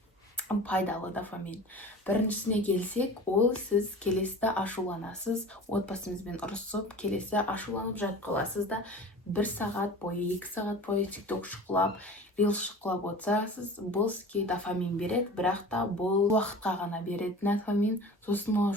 пайдалы дофамин. Біріншісіне келсек, ол сіз келесіде ашуланасыз, отбасыңызбен ұрысып, келесі ашуланып жатып қаласыз да, 1 сағат бойы, 2 сағат бойы TikTok шықылап, Reels шықылап отырсыз. Бұл сізге дофамин береді, бірақ та бұл уақытқа ғана береді дофамин, сосын ол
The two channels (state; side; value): normal; both; correlation 0.38